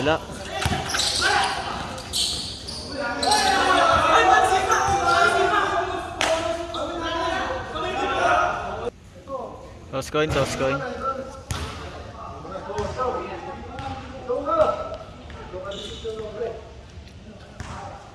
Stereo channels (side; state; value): both; identical; correlation 1.00